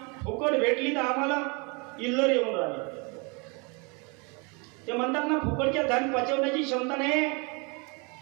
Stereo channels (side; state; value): left; quieter; 30.9 dB